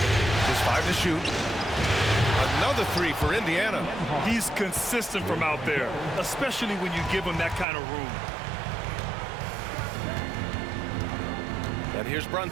Just 5 to shoot. Another 3 for Indiana. He's consistent from out there, especially when you give him that kind of room. And here's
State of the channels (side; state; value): left; drops out; at 7.7 s